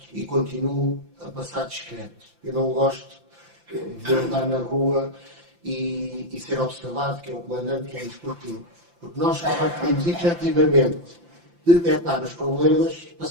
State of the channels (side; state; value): left; late; 5.8 ms